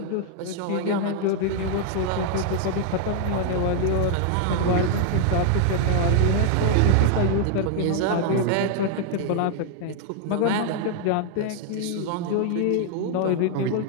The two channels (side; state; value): both; different; correlation 0.00